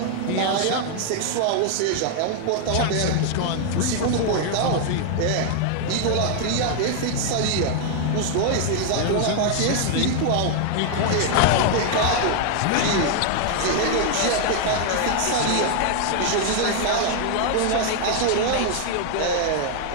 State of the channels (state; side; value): different; both; correlation 0.00